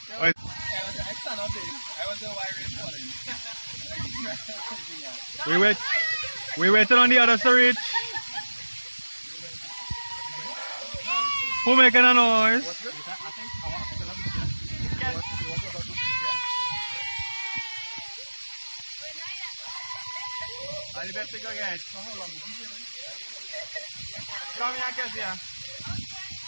Wait. I stand up there. I was the why rain falling. We waited on the others to reach. Who making a noise? I better go get. Come here, Kezia.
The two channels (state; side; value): inverted; both; correlation -1.00